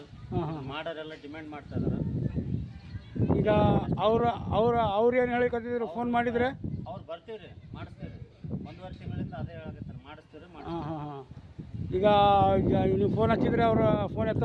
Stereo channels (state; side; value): identical; both; correlation 1.00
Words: ಮಾಡೋರೆಲ್ಲ ಡಿಮ್ಯಾಂಡ್ ಮಾಡ್ತಾ ಇದ್ದಾರೆ. ಈಗ ಅವ್ರು ಏನು ಹೇಳಿಕತ್ತಿದ್ರು ಫೋನ್ ಮಾಡಿದ್ರೆ? ಅವ್ರು ಬರ್ತೀವಿ, ಮಾಡಿಸ್ತೀವಿ, 1.5 ತಿಂಗಳಿಂದ ಅದೇ ಹೇಳಕತ್ತಾರೆ, ಮಾಡಿಸ್ತೀವಿ. ಈಗ ನೀವು ಫೋನ್ ಹಚ್ಚಿದ್ರೆ ಅವ್ರ ಫೋನ್